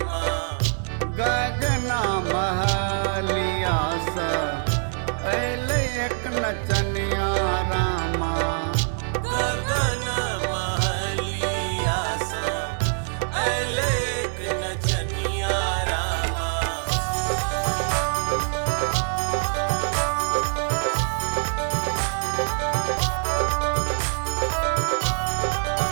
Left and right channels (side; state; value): left; silent; digital silence